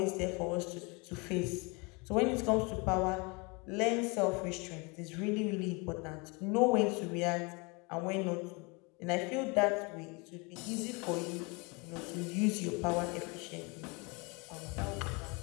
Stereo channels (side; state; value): right; quieter; 29.3 dB